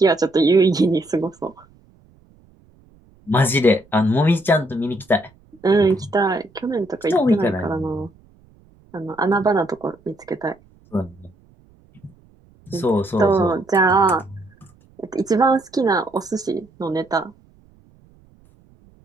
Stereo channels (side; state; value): right; noise; rumble, 30 dB below the sound